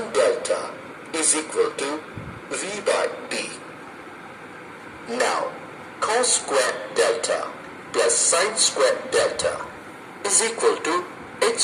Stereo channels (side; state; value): both; identical; correlation 1.00